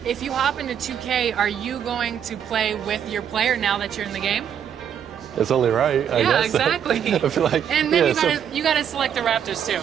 If you hop into 2K, are you going to play with your player now that you're in the game? It's only right, I guess. Yeah, exactly. I feel like, and then you gotta select the Raptors too.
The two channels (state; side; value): quieter; left; 8.8 dB